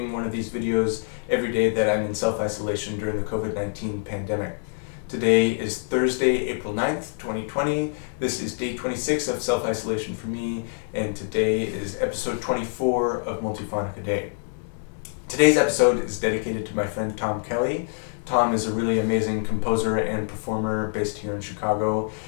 one of these videos every day that I'm in self-isolation during the COVID-19 pandemic. Today is Thursday, April 9th, 2020. This is day 26 of self-isolation for me, and today is episode 24 of Multiphonic-a-Day. Today's episode is dedicated to my friend Tom Kelly. Tom is a really amazing composer and performer based here in Chicago.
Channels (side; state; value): right; silent; digital silence